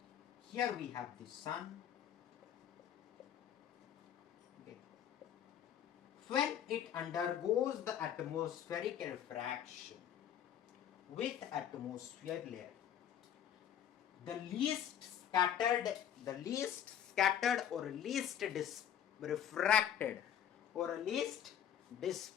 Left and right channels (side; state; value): right; quieter; 9.8 dB